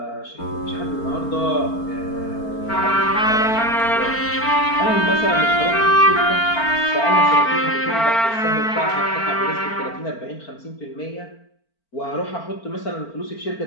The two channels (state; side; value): late; right; 4.4 ms